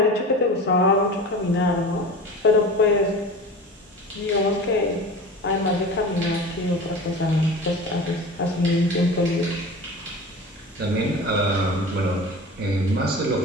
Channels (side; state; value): both; normal; correlation 0.34